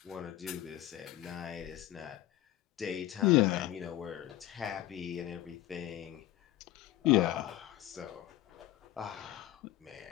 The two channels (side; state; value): right; quieter; 14.4 dB